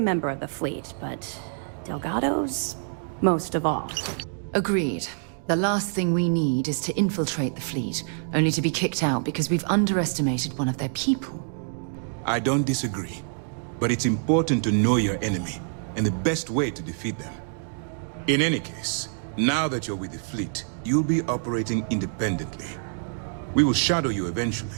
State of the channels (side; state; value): left; silent; digital silence